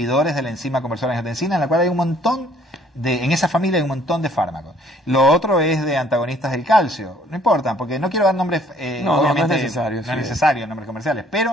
de la enzima conversora de angiotensina, en la cual hay un montón en esa familia hay un montón de fármacos. Lo otro es de antagonistas del calcio. No importa, porque no quiero dar nombres, obviamente no es necesario. No es necesario, nombres comerciales,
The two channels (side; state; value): both; normal; correlation 0.59